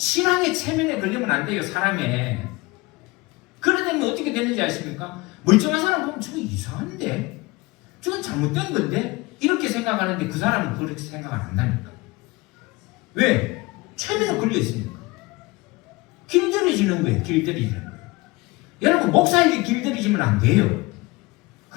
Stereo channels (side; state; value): right; quieter; 22.9 dB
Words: 체면에 걸리면 안 돼요. 사람에. 그러다면 어떻게 되는지 아십니까? 멀쩡한 사람 보면 저거 이상한데? 저건 잘못된 건데? 이렇게 생각하는데 그 사람은 그렇게 생각 안 한다니까. 왜? 체면에 걸려 있으니까. 길들여지는 거예요. 길들여지는 거예요. 여러분 목사에게 길들여지면 안 돼요.